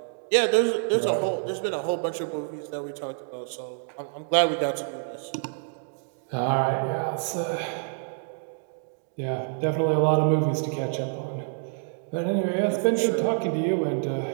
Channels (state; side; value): silent; left; digital silence